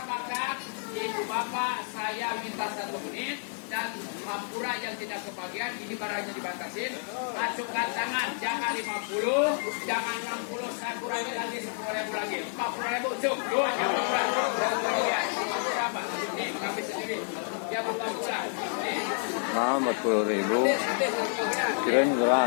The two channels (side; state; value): right; silent; 58 dB below the other